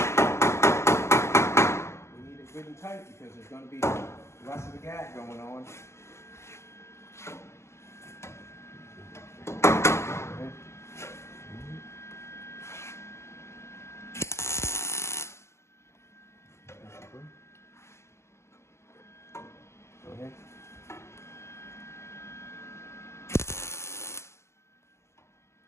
We need it good and tight because there's going to be less of a gap going on. Go ahead.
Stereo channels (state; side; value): late; right; 0.13 ms